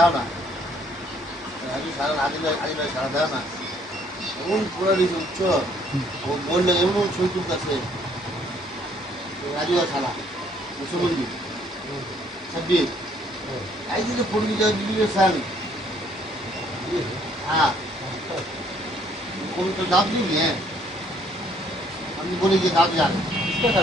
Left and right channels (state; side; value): normal; both; correlation 0.64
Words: না, রাজু সারা আদিল সারা দাও না, এমন পুরা দিয়েছে উচ্চ, ও বললে এমন ছবি তুলতেছে রাজু আর সারা মুসলমান ছাব্বিশ এই যে পড়বি ভিডিও সাল হ্যাঁ तो दाब नहीं है हम बोले कि दाब जाना किसका